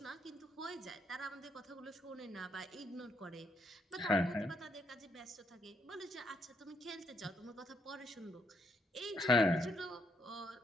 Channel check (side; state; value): both; normal; correlation 0.74